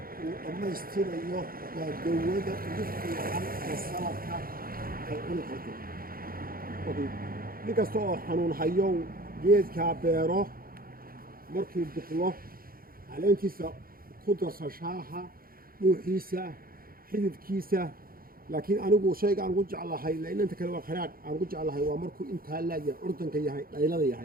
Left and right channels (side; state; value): left; late; 0.42 ms